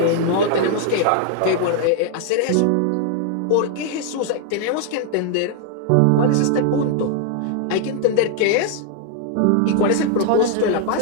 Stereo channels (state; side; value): different; both; correlation 0.00